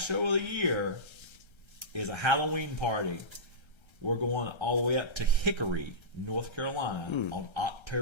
show of the year is a Halloween party. We're going all the way up to Hickory, North Carolina on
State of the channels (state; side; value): late; right; 1.3 ms